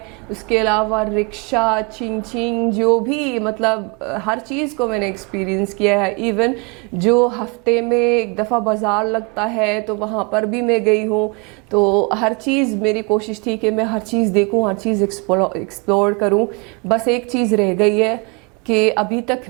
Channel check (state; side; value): quieter; left; 30.9 dB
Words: اس کے علاوہ رکشہ، چنگ جو بھی مطلب ہر چیز کو میں نے ایکسپیرینس کیا ہے. ایون جو ہفتے میں ایک دفعہ بازار لگتا ہے تو وہاں پر بھی میں گئی ہوں. تو ہر چیز میری کوشش تھی کہ میں ہر چیز دیکھوں، ہر چیز ایکسپلور کروں. بس ایک چیز رہ گئی ہے کہ ابھی